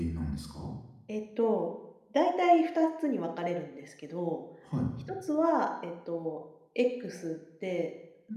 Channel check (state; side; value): identical; both; correlation 1.00